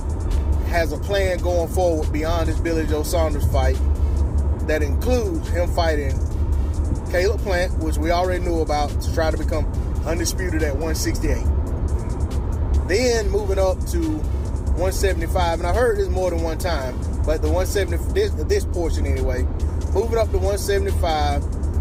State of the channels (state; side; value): identical; both; correlation 1.00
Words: has a plan going forward beyond this Billy Joe Saunders fight that includes him fighting Caleb Plant, which we already knew about, to try to become undisputed at 168. Then moving up to 175, and I heard this more than one time, but the 170, this portion anyway, moving up to 175